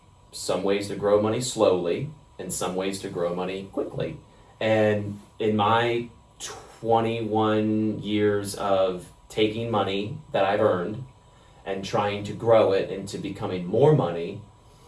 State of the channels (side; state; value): both; identical; correlation 1.00